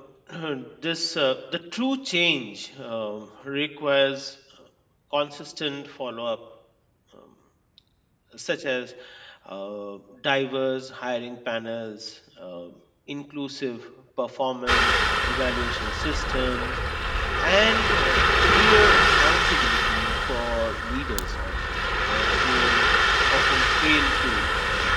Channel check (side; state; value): both; identical; correlation 1.00